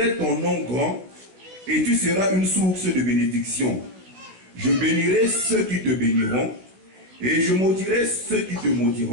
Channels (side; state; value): left; late; 16 ms